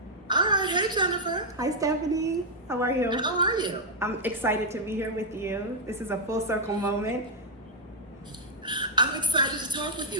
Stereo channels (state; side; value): normal; both; correlation -0.02